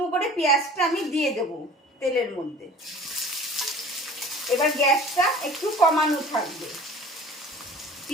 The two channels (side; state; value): both; normal; correlation 0.45